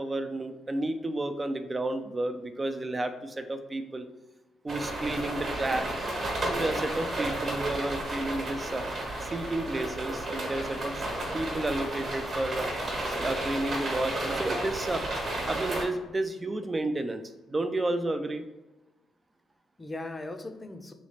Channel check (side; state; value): both; normal; correlation 0.87